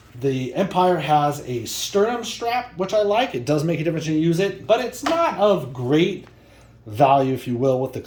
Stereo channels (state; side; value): identical; both; correlation 1.00